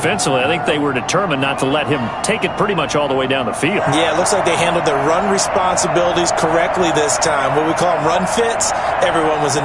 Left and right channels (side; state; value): both; identical; correlation 1.00